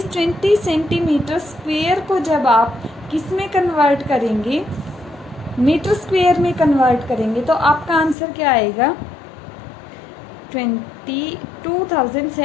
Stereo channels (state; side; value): drops out; right; at 8.2 s